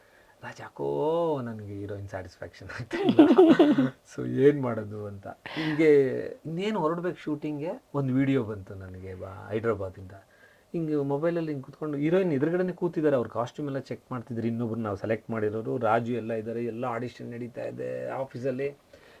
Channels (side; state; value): both; identical; correlation 1.00